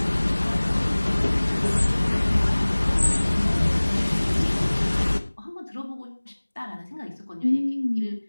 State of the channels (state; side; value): inverted; both; correlation -1.00